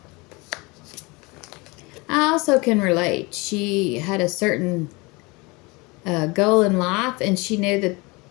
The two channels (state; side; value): quieter; right; 25.9 dB